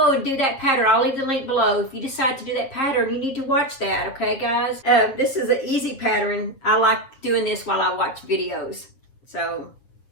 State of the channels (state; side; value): late; right; 7.5 ms